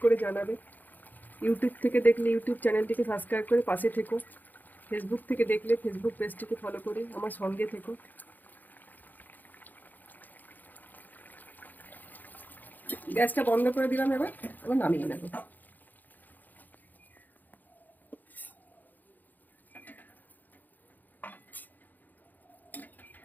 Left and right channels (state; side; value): late; right; 0.085 ms